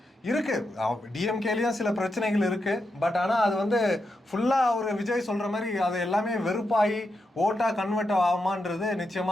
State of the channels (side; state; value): both; normal; correlation 0.85